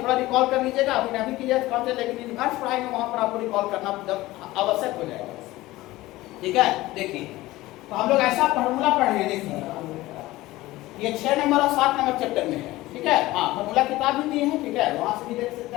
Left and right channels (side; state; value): right; quieter; 18.0 dB